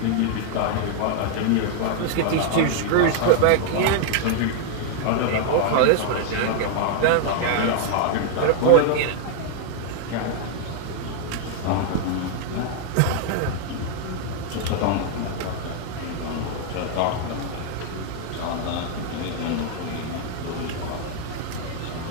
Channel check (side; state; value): both; different; correlation 0.00